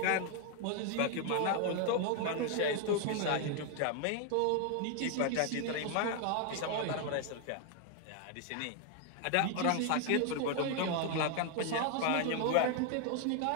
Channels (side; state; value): both; different; correlation 0.00